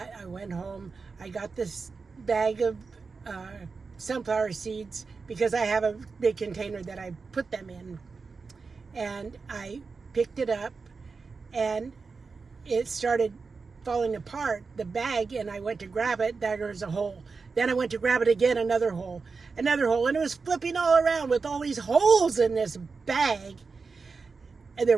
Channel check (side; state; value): left; quieter; 4.7 dB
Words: I went home. I got this bag of sunflower seeds because I have a big container that I put them in. And I picked it up and it started falling apart, the bag, and I went to grab it. There was a hole. Then I went to grab it again, another hole, and it was flipping all around with all these holes in this bag, and they